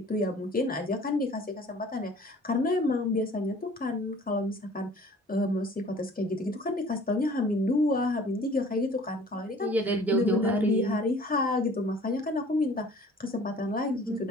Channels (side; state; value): both; normal; correlation 0.50